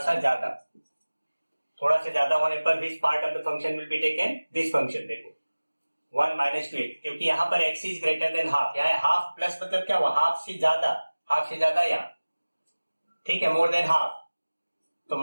ज्यादा, थोड़ा सा ज्यादा होने पर which part of the function will be taken, this function. देखो 1 माइनस 2x, क्योंकि यहाँ पर x is greater than half, यहाँ हाफ प्लस मतलब क्या हुआ, हाफ से ज्यादा यहाँ, ठीक है, मोर देन हाफ, तो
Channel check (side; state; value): both; inverted; correlation -1.00